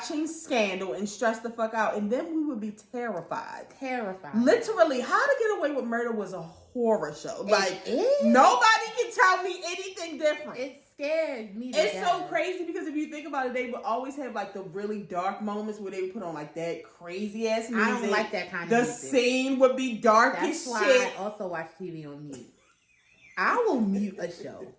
Scandal and stress the fuck out. And then we would be terrified. Literally, How to Get Away with Murder was a horror show. Like, nobody can tell me anything different. It scared me. It's so crazy because if you think about it, they would always have like the really dark moments where they would put on like that crazy ass music. I don't like that kind of music. The scene would be dark as shit. That's why I also watch TV on mute. I will mute a show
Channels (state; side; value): identical; both; correlation 1.00